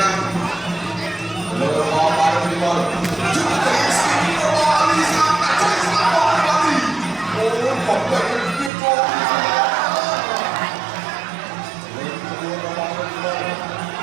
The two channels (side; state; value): left; drops out; at 8.7 s